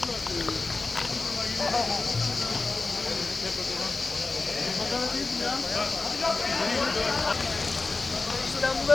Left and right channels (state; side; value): quieter; right; 3.7 dB